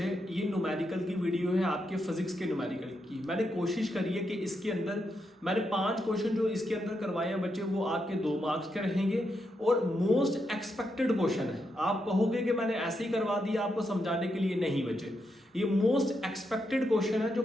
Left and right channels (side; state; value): both; normal; correlation 0.82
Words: ये न्यूमेरिकल की वीडियो है, आपके फिजिक्स के न्यूमेरिकल की। मैंने कोशिश करी है कि इसके अंदर मैंने 5 क्वेश्चन जो इसके अंदर करवाए हैं बच्चे, वो आपके 2 मार्क्स के रहेंगे और मोस्ट एक्सपेक्टेड क्वेश्चन है। आप कहोगे कि मैंने ऐसे ही करवा दिया आपको समझाने के लिए, नहीं बच्चे, ये मोस्ट एक्सपेक्टेड क्वेश्चन है। जो